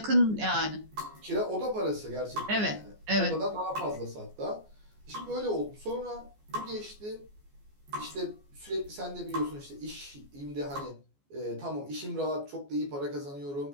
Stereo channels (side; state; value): left; late; 14 ms